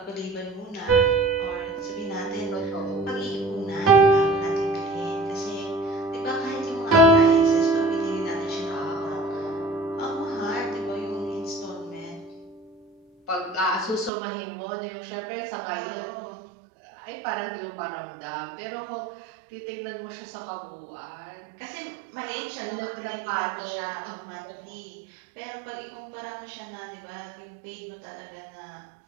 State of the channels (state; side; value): drops out; left; at 14.1 s